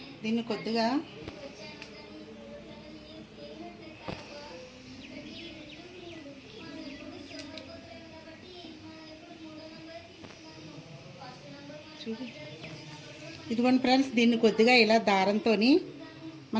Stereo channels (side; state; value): both; identical; correlation 1.00